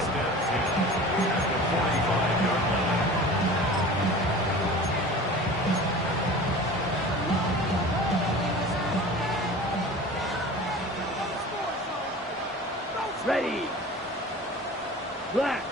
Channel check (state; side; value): normal; both; correlation 0.38